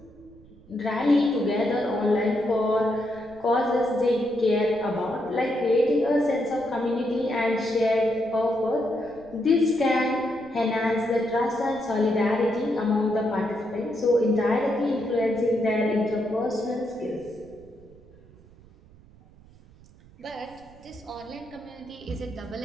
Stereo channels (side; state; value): right; noise; rumble, 24 dB below the sound